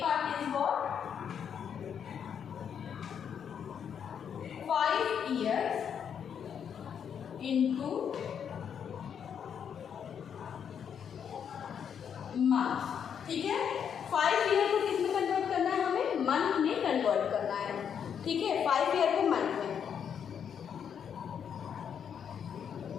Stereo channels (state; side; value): quieter; right; 7.9 dB